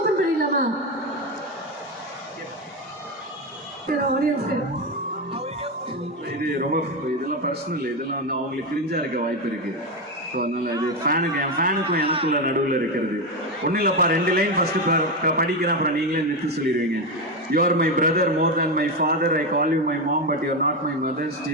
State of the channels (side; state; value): both; normal; correlation 0.12